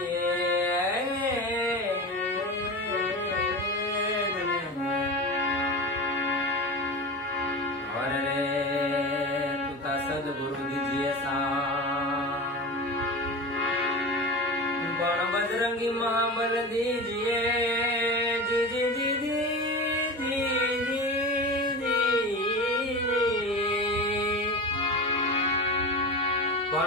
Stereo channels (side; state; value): both; normal; correlation 0.27